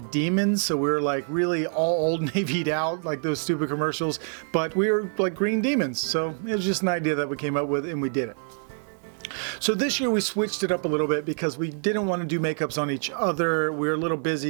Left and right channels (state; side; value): silent; left; 61 dB below the other